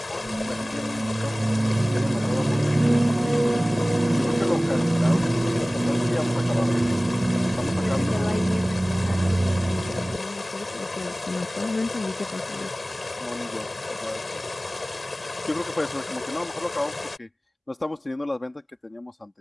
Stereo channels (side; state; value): both; normal; correlation 0.98